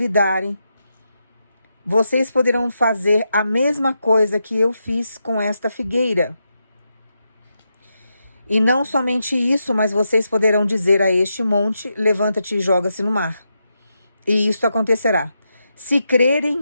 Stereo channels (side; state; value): both; inverted; correlation -0.85